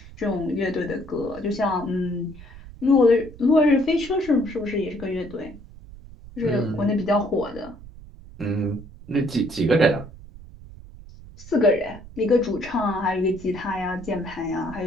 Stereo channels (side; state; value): right; noise; rumble, 17 dB below the sound